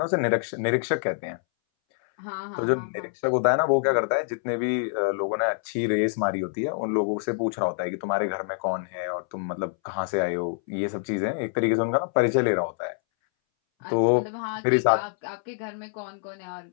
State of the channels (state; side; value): silent; right; 61 dB below the other